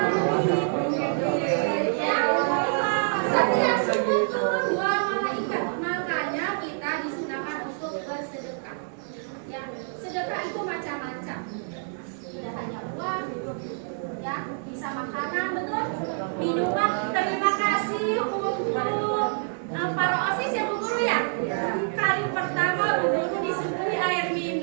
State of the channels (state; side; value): silent; left; digital silence